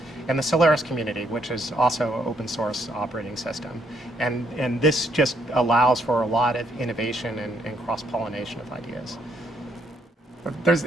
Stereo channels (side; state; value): both; normal; correlation 0.71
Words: and the Solaris community, which is also an open source operating system. And this just allows for a lot of innovation and cross-pollination of ideas.